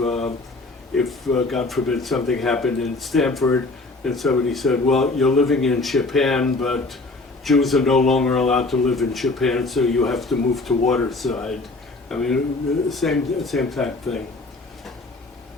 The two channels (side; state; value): right; quieter; 3.3 dB